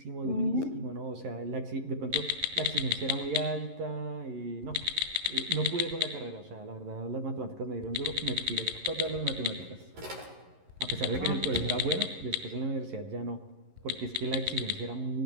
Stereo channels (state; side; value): late; left; 11 ms